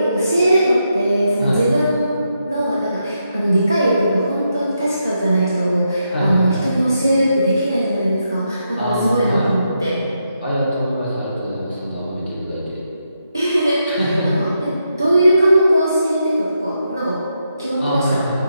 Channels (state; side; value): inverted; both; correlation -0.83